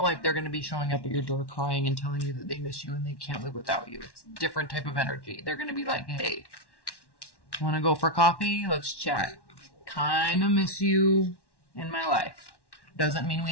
like they're going to be showing up at your door crying and telling you that they miss you and they can't live without you. It's a different type of energy. They're going to be like, hey, want to go for coffee? Let's chat. Kind of miss you in my life. Doesn't mean we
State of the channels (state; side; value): late; right; 1.1 ms